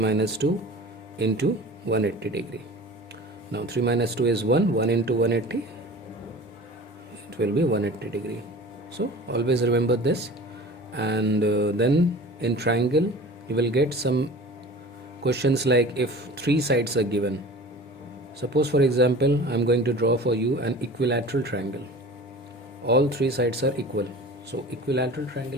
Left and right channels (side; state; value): both; normal; correlation 0.40